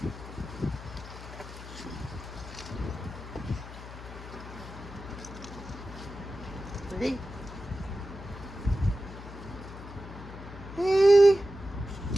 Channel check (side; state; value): left; noise; hum, 13 dB below the sound